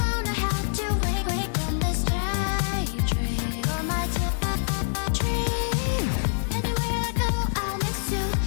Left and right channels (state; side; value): silent; right; digital silence